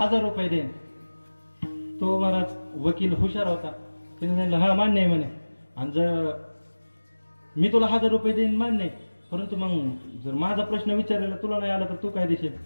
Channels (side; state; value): both; inverted; correlation -1.00